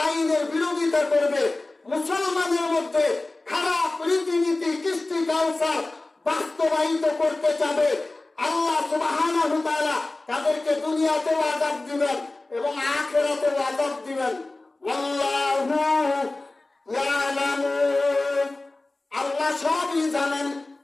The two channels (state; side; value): quieter; right; 3.0 dB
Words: আইনের বিরোধিতা করবে, মুসলমানের মধ্যে খারাপ রীতিনীতি, কৃষ্টি কালচার বাস্তবায়িত করতে চাবে, আল্লাহ সুবহানাহু ওয়া তাআলা তাদেরকে দুনিয়াতেও আযাব দিবেন এবং আখিরাতেও আযাব দিবেন। আল্লাহু ইয়ালামু, আল্লাহ সবই জানেন